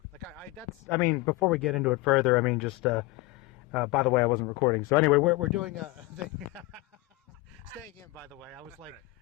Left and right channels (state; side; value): quieter; right; 21.4 dB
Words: Like, before we get into it further, just, by the way, I wasn't recording. So anyway, we're doing a thing. Staying in, by the way. I was